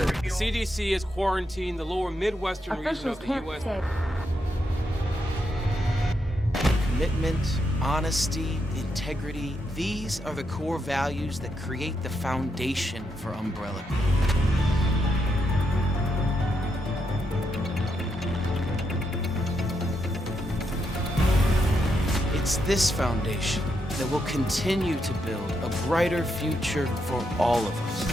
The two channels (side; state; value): both; normal; correlation 0.81